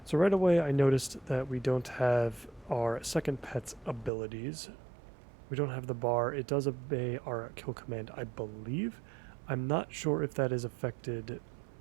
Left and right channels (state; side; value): drops out; left; at 4.1 s